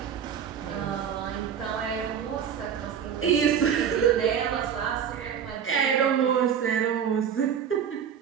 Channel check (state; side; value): quieter; left; 8.1 dB